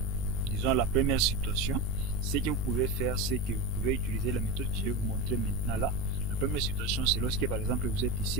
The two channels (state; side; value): noise; right; rumble, 8 dB below the sound